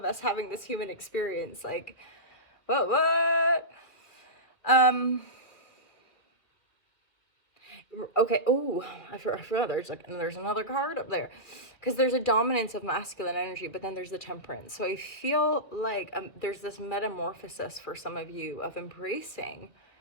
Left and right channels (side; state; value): right; late; 2.3 ms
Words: us having this human experience. Like, what? Okay. I forgot. There's another card up there, because there's a dominance of masculine energy, but then there's the temperance. So I feel like there's this metamorphosis for some of you of embracing